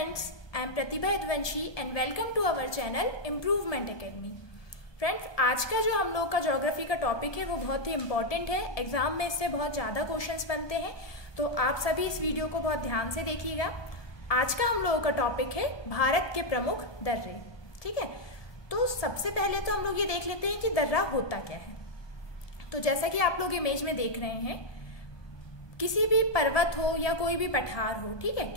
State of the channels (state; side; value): late; right; 1.2 ms